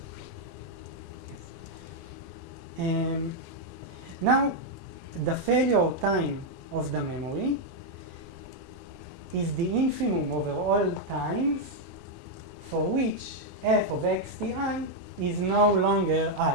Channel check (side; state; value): both; normal; correlation 0.00